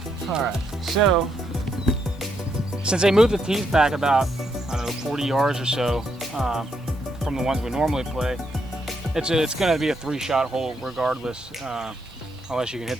All right, so since they moved the tees back about, I don't know, 40 yards or so from the ones we normally play, it's going to be a 3-shot hole regardless, unless you can hit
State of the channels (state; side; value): normal; both; correlation 0.77